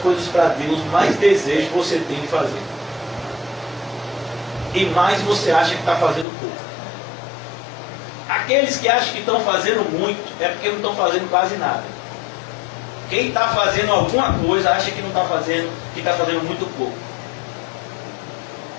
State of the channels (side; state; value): right; drops out; at 6.2 s